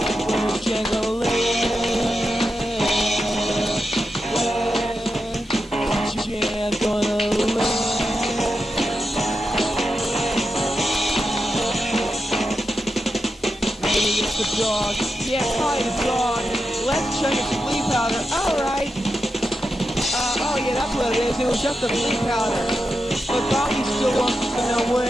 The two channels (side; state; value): both; normal; correlation 0.88